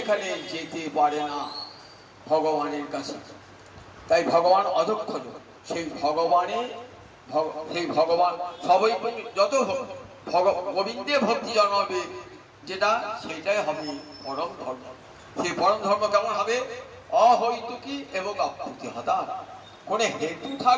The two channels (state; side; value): identical; both; correlation 1.00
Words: যেতে পারে না ভগবানের কাছে। তাই ভগবান অধঃসজ। সেই ভগবান সবাই যত গোবিন্দে ভক্তি জন্মাবে যেটা, সেটাই হবে পরম ধর্ম। সেই পরম ধর্ম কেমন হবে? অহৈতুকী এবং অপ্রতিহতা, কোনো হেতু